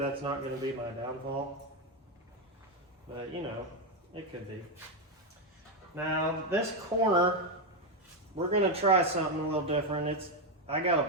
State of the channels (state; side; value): normal; both; correlation 0.06